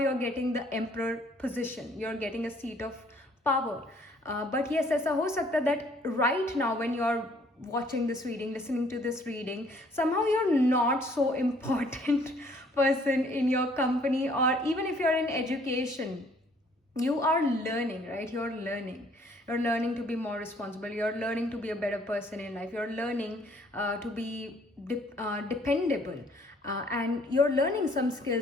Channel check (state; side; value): normal; both; correlation 0.61